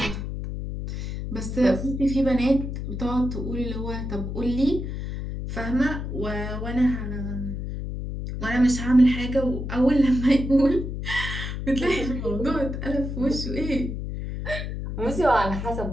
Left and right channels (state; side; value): noise; left; hum, 5 dB below the sound